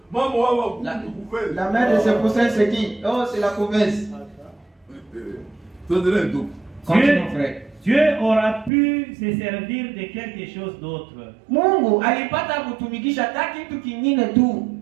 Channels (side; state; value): left; drops out; at 8.7 s